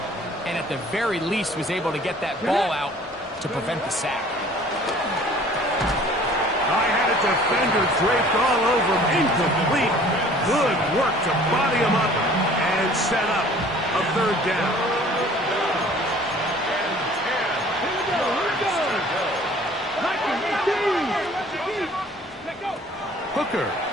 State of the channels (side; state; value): both; normal; correlation 0.51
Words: and at the very least was able to get that ball out to prevent the sack. I had a defender draped all over him. Incomplete. Good work to body him up and set up a 3rd down. Hooker.